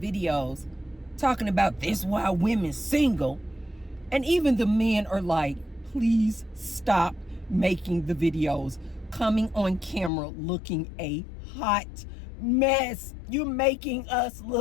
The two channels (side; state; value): right; drops out; at 10.1 s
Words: talking about this why women single. And even the men are like, please stop making the videos, coming on camera looking a hot mess. You're making us